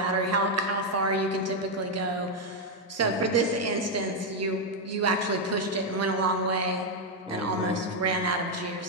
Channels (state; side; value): normal; both; correlation 0.02